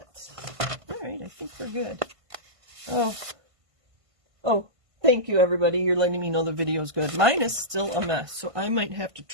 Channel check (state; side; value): late; left; 1.5 ms